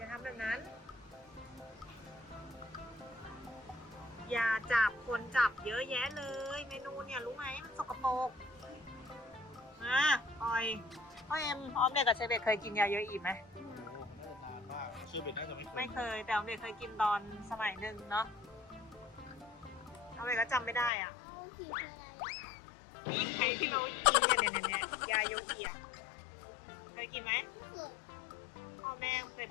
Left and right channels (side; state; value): right; drops out; at 20.9 s